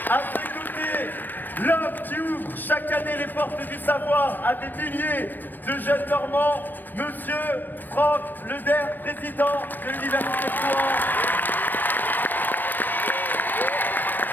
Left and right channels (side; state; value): right; late; 0.091 ms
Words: À ses côtés, l'homme qui ouvre chaque année les portes du savoir à des milliers de jeunes Normands, Monsieur Franck Leder, président de l'Université de Rouen.